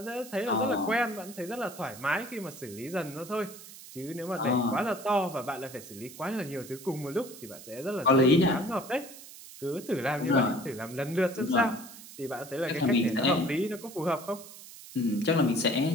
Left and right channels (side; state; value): right; noise; hiss, 16 dB below the sound